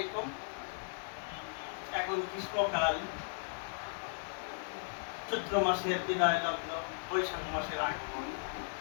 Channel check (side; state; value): right; silent; digital silence